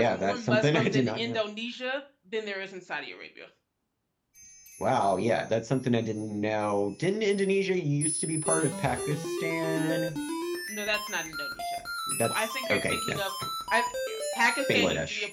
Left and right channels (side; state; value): both; identical; correlation 1.00